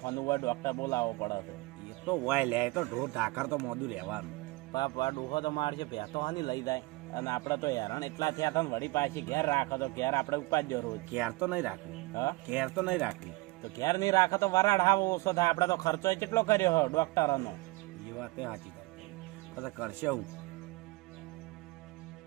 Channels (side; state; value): left; quieter; 22.8 dB